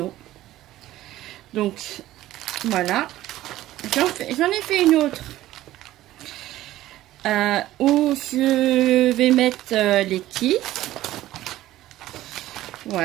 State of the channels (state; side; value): quieter; left; 15.0 dB